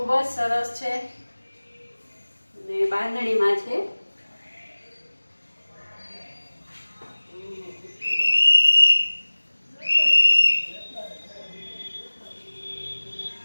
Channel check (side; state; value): both; inverted; correlation -1.00